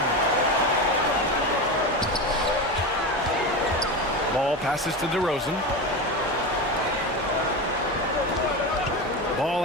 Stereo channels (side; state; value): both; normal; correlation 0.21